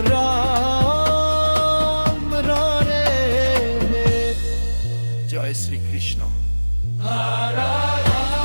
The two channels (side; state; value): both; inverted; correlation -1.00